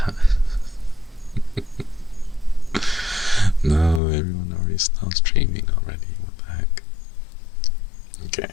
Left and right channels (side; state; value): right; drops out; at 4.0 s